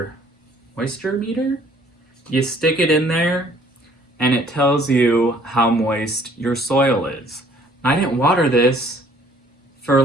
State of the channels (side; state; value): both; normal; correlation 0.59